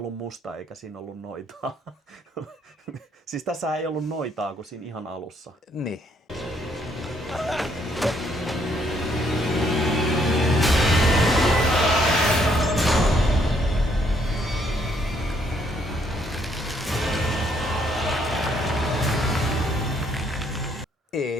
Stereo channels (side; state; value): both; normal; correlation 0.70